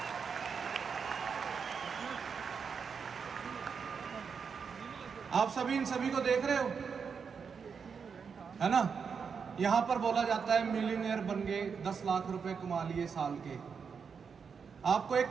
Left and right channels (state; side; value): quieter; left; 6.1 dB